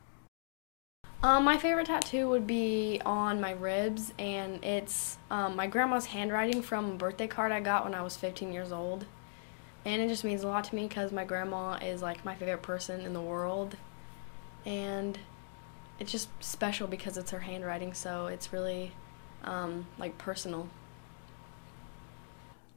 My favorite tattoo would be on my ribs, and it's my grandma's handwriting from a birthday card I got when I was 15 years old. And it just means a lot to me because my grandma is like my favorite person in the world. And it's just special because it's her handwriting, so it's really like personal.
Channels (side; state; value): right; silent; digital silence